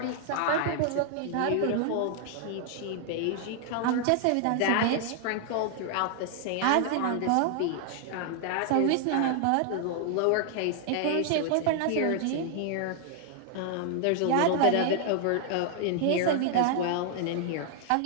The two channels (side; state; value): both; different; correlation 0.00